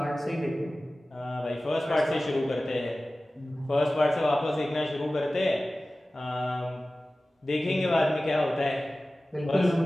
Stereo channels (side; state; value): both; normal; correlation 0.96